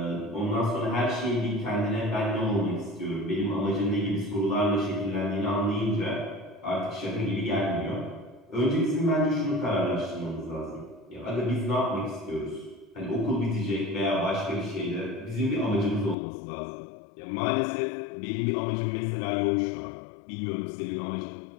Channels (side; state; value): right; drops out; at 16.2 s